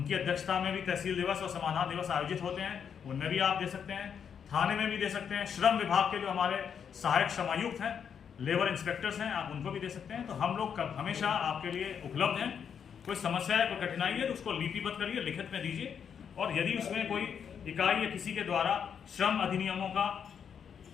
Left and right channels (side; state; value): right; quieter; 7.5 dB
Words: अध्यक्षता में भी तहसील दिवस और समाधान दिवस आयोजित होते हैं, उनमें भी आप दे सकते हैं। थाने में भी दे सकते हैं। श्रम विभाग के जो हमारे सहायक श्रमायुक्त हैं, लेबर इंस्पेक्टर्स हैं, आप उनको भी दे सकते हैं। तो हम लोग हमेशा आपके लिए उपलब्ध हैं। कोई समस्या है, कोई कठिनाई है तो उसको लिपिबद्ध करिए, लिखित में दीजिए। और यदि उसमें कोई इकाई या किसी के द्वारा श्रम अधिनियमों का